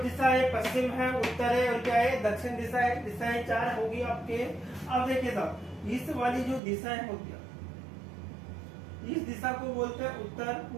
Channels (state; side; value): drops out; left; at 6.6 s